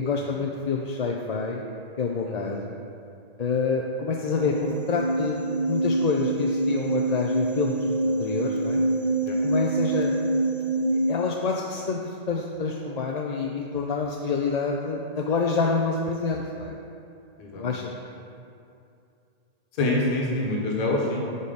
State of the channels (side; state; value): left; late; 1.8 ms